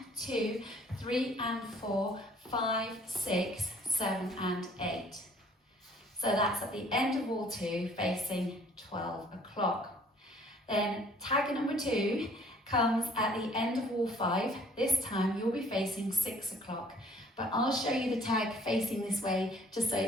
2, 3 and 4, 5, 6, 7 and 8. So that's at the end of wall 2 facing 12 o'clock. Then tag number 2 comes at the end of wall 5. This time you'll be facing 6 o'clock, but I'll show you the tag facing this way just so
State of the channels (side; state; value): both; normal; correlation 0.58